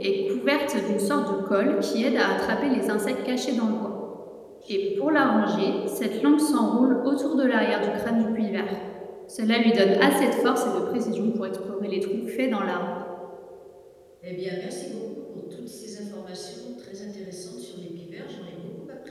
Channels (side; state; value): both; identical; correlation 1.00